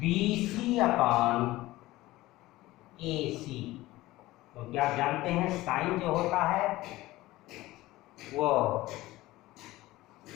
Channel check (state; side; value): quieter; right; 17.9 dB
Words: BC upon AC, क्योंकि आप जानते हैं साइन जो होता है वो